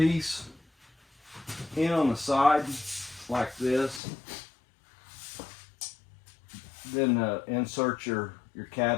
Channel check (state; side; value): drops out; right; at 4.0 s